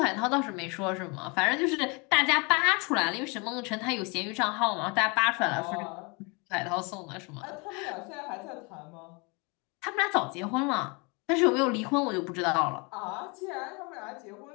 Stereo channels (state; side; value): quieter; right; 30.4 dB